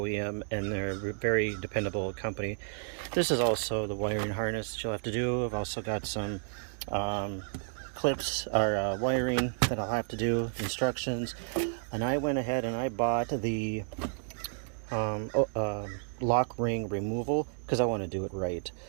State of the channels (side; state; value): left; silent; digital silence